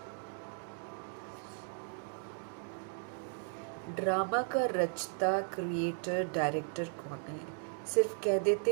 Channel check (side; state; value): left; silent; 54 dB below the other